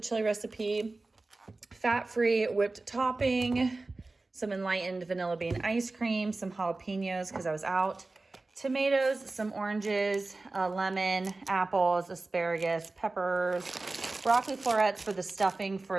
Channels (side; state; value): left; quieter; 3.3 dB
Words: recipe, fat-free whipped topping, some enlightened vanilla bean ice cream, some jalapenos because I was out, tomatoes, some oranges, lemon, apples, asparagus, peppers, broccoli florets for the stuffing